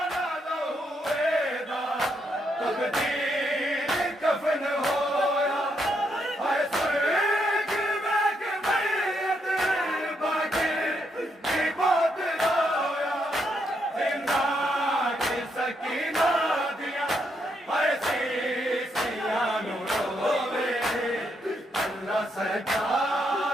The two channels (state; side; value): normal; both; correlation 0.78